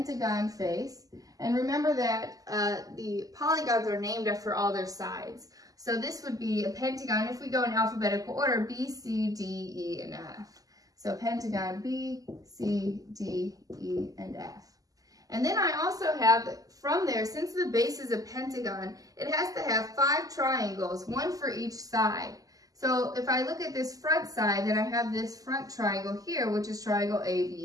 face. And remember that the polygons are named after all their sides. So this would be a pentagon, if we go in alphabetical order, B, C, D, E, and F. So pentagon B, C, D, E, and F. And then I also have, from there, since the base is a pentagon, it has to have 5 triangles, one for each side. So if I look at this front side, then I have this front triangle here, which is triangle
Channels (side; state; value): left; late; 0.17 ms